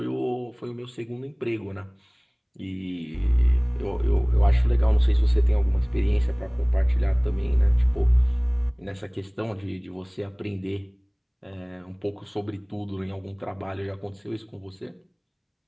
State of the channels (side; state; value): both; identical; correlation 1.00